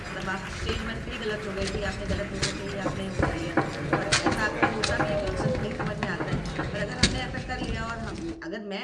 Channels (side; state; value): both; identical; correlation 1.00